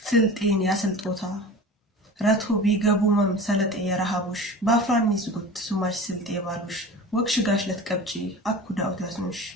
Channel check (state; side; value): normal; both; correlation 0.36